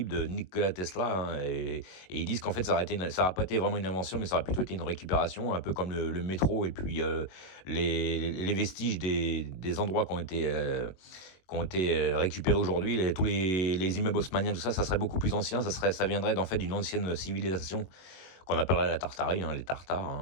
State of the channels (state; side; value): late; right; 21 ms